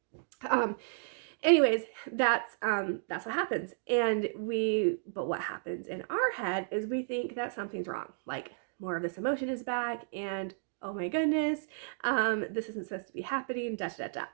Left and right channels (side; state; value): left; silent; digital silence